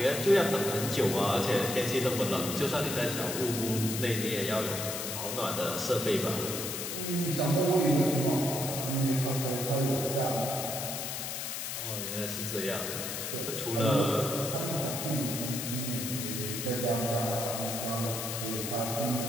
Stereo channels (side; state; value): left; noise; hiss, 4 dB below the sound